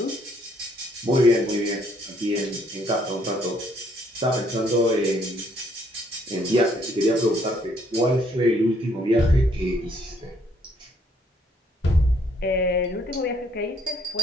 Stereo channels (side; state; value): both; normal; correlation 0.66